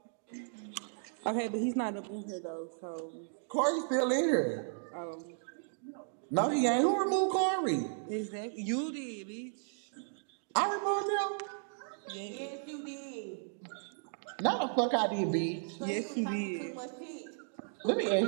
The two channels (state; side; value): silent; left; digital silence